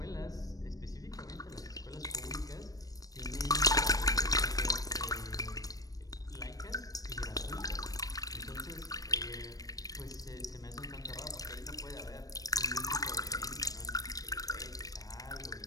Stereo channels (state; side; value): late; right; 0.18 ms